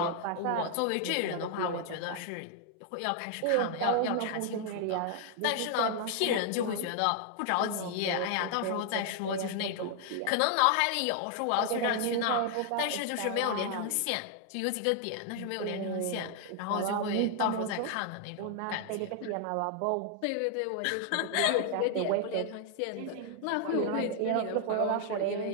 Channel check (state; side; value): different; both; correlation 0.00